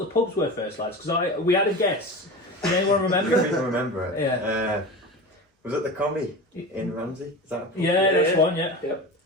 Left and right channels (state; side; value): normal; both; correlation 0.30